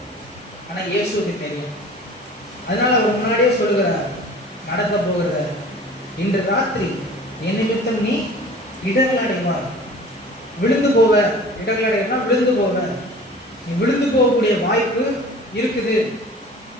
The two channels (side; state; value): both; normal; correlation 0.44